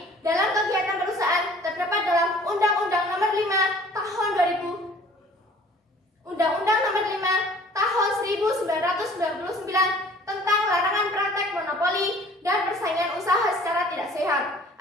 Dalam kegiatan perusahaan terdapat dalam Undang-Undang Nomor 5 Tahun 2000, Undang-Undang Nomor 5 Tahun 1999 tentang larangan praktek monopoli dan persaingan usaha secara tidak sehat.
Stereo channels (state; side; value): normal; both; correlation 0.52